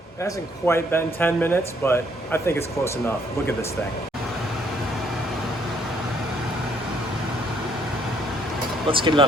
It hasn't quite been 10 minutes, but I think it's close enough. Look at this thing. Let's get it on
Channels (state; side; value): normal; both; correlation 0.67